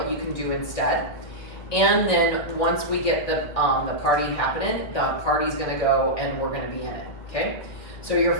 you can do instead. And then once we get the party happening, the party's gonna go and we're gonna be in it, okay? So your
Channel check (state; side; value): late; right; 2.1 ms